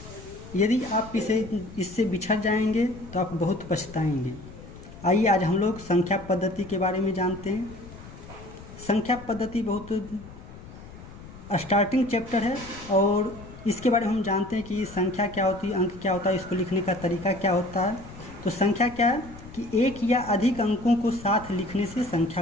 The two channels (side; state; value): left; noise; rumble, 16 dB below the sound